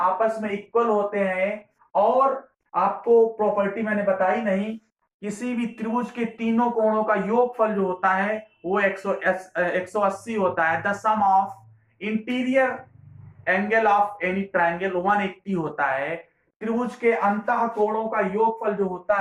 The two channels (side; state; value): both; identical; correlation 1.00